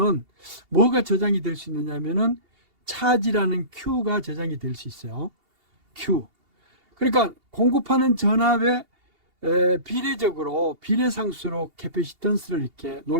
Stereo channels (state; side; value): late; left; 2.8 ms